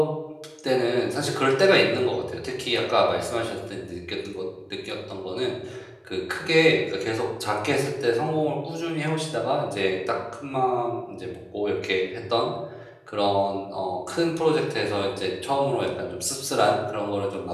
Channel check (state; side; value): identical; both; correlation 1.00